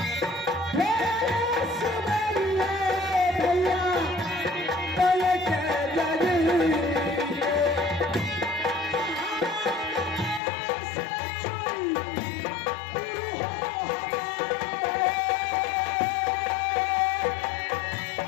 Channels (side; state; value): right; drops out; at 10.4 s